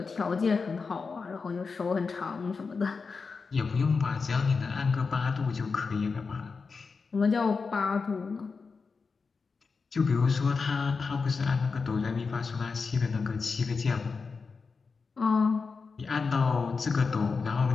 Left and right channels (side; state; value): right; quieter; 4.8 dB